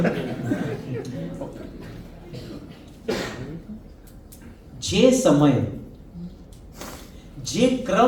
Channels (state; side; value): identical; both; correlation 1.00